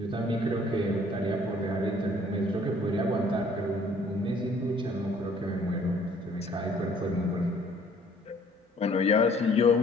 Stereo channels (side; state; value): both; normal; correlation 0.58